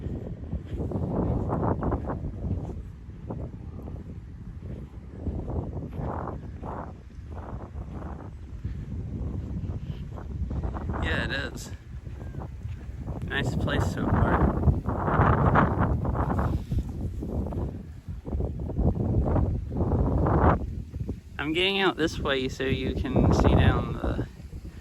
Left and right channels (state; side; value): identical; both; correlation 1.00